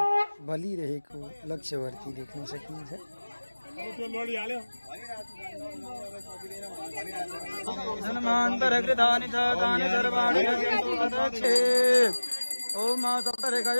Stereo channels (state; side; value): inverted; both; correlation -1.00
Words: बलिरहेको लक्ष्यवर्ती देख्न सकिन्छ। धनमान्तरकृतानि च तानि सर्वाणि अदक्षे। ओम